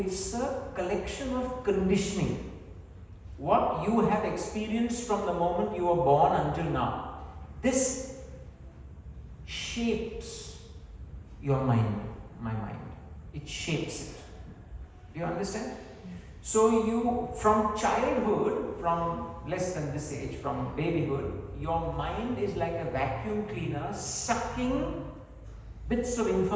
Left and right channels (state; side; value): identical; both; correlation 1.00